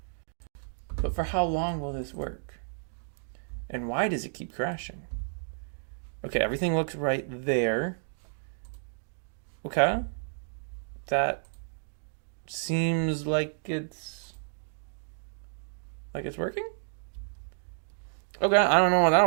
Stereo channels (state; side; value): silent; left; digital silence